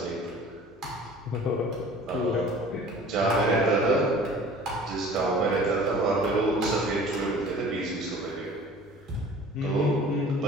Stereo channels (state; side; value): normal; both; correlation 0.46